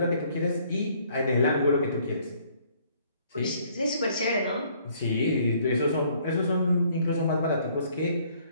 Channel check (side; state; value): both; inverted; correlation -0.63